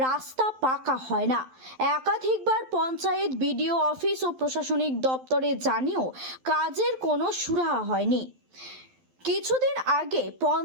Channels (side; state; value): left; late; 12 ms